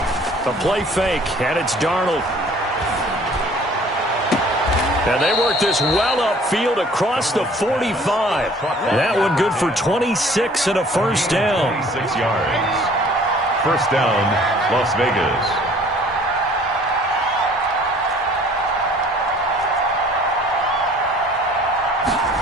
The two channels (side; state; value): both; normal; correlation 0.53